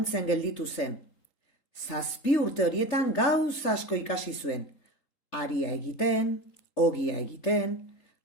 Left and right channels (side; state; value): right; late; 3.8 ms